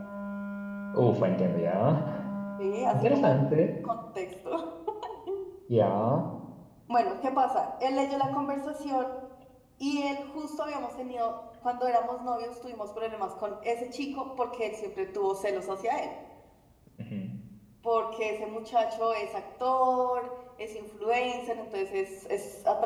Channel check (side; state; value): both; identical; correlation 1.00